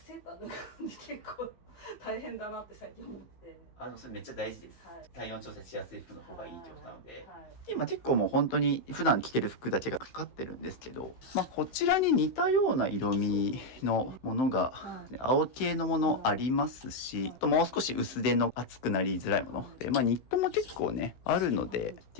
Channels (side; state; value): right; late; 15 ms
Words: ーター脱ぐんで結構大変だなって最近思って。それめっちゃ大事です。はい、体温調節しやすい服の方がいいってことなので、はい、今結構もう本当に普段着てる服だけがかかってるんですけど、まあこちらに似たような色味のものが、青系のものありますし、あともう少し薄手の厚くなりづらいもので、まあニットも結構ねあるので、って